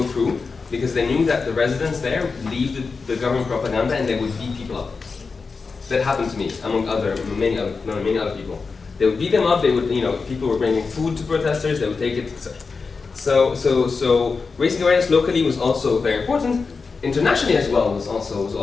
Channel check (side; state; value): right; quieter; 4.6 dB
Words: through because they knew that the residents there believed the government propaganda and they would beat people up. That happened to me, among many other people. They would beat them up. They would, people were bringing food to protesters. They would take it, etc. So raising awareness locally was also very important. Internationally as well was